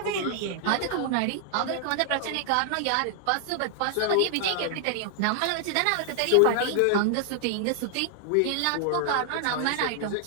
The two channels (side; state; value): both; different; correlation 0.00